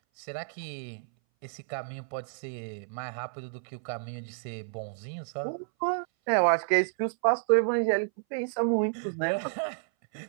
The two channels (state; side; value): silent; left; 58 dB below the other